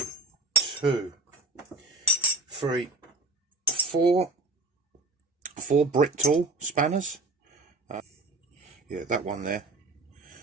2, 3, 4 brick tool spanners. Yeah, that one there,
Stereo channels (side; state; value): left; quieter; 3.4 dB